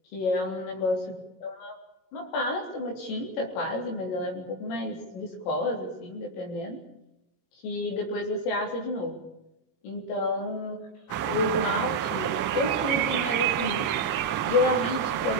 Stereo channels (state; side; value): late; right; 21 ms